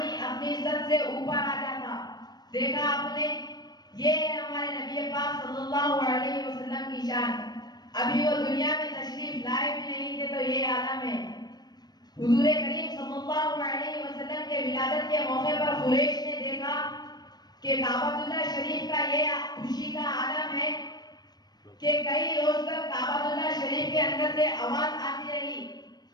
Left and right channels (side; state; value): right; late; 0.19 ms